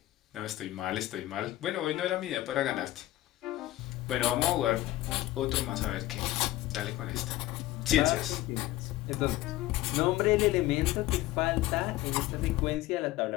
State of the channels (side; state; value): right; quieter; 16.1 dB